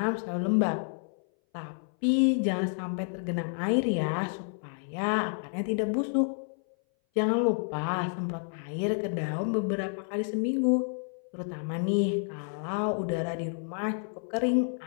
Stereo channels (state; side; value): silent; right; 58 dB below the other